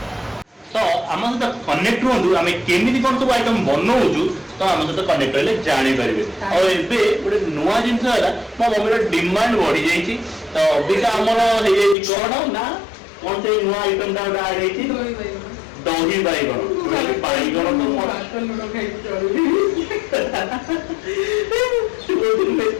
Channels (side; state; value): right; drops out; at 12.0 s